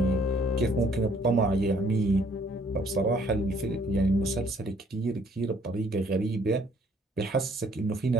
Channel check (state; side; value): normal; both; correlation 0.62